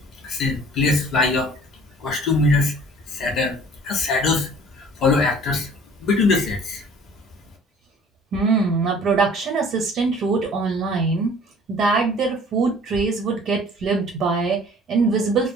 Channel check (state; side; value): normal; both; correlation 0.51